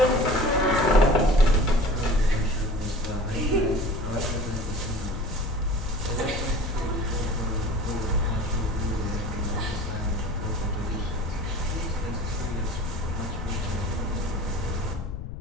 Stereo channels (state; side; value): noise; left; rumble, 7 dB below the sound